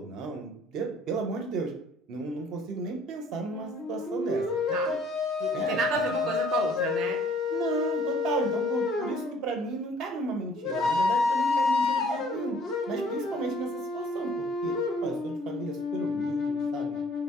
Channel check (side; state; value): both; normal; correlation 0.57